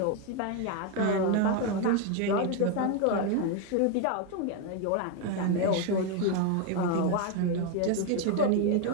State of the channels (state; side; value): different; both; correlation 0.02